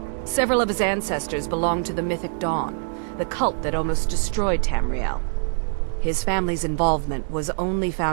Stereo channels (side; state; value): left; silent; digital silence